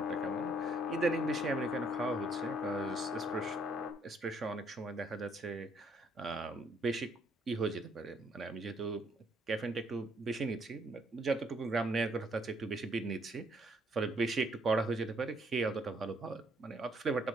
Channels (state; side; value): normal; both; correlation 0.67